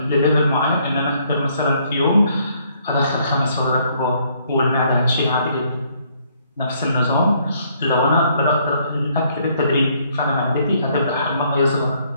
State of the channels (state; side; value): inverted; both; correlation -0.67